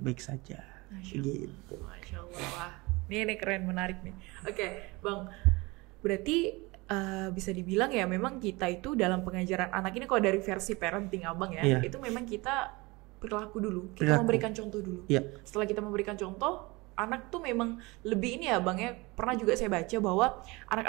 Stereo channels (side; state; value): left; quieter; 24.0 dB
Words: saja. Gitu. Masya Allah. Wah, ini keren, menarik nih. Bang, berarti bisa dibilang ya memang kita itu dalam pengajaran anak ini, kalau dari versi parenting Abang ya, itu memang kita perilaku dulu, kita memberikan contoh dulu. Setelah kita memberikan contoh, anak tuh memang lebih ini ya Bang ya. Pernah juga saya baca bahwa